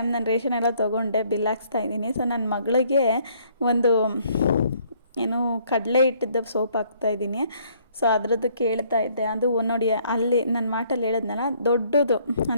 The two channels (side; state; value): both; inverted; correlation -0.64